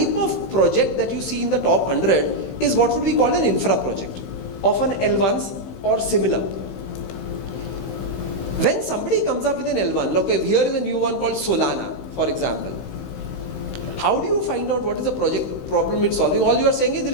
of project that you see in the top 100 is what would be called an infra project, often L1s or similar. When somebody comes up with an L1, look, here is a new one called Solana, for example. How do you find out what is the project problem it's solving? All you are saying is it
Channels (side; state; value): right; late; 15 ms